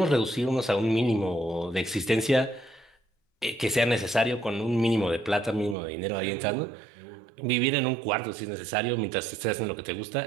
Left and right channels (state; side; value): drops out; left; at 5.8 s